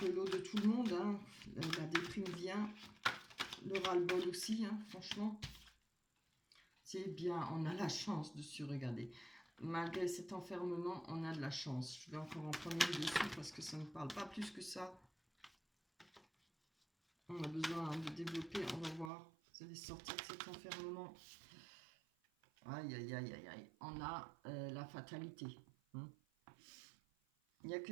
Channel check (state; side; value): drops out; left; at 19.1 s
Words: le lot de tout le monde. Hein. La déprime vient, le ras-le-bol aussi, hein, franchement. C'est bien, on a la chance de se regarder. Malgré cet enfermement, on a de la chance. Je vais encore en prendre une dessus parce que ça ne parle pas plus que ça. On a besoin de développer, on va voir. Vous allez sortir de cet enfermement. Aïe, aïe, aïe, aïe, aïe. On a la fatalité. Hein. Il y a